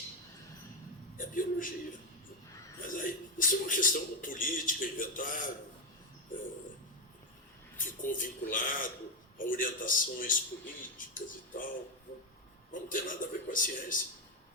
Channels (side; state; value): both; normal; correlation 0.05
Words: É biologia. Mas aí, isso é uma questão política, inventaram, ficou vinculado a orientações políticas e tal. Não tem nada a ver com a ciência